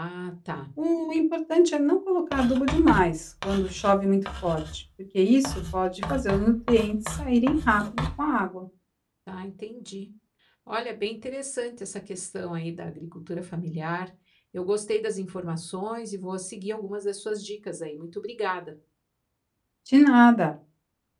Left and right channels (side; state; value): both; identical; correlation 1.00